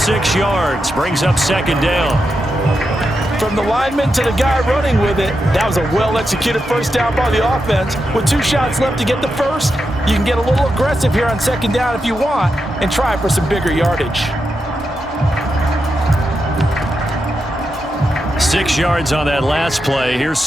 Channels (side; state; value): both; normal; correlation 0.86